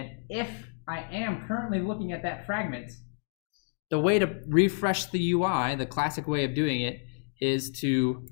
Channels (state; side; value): silent; right; digital silence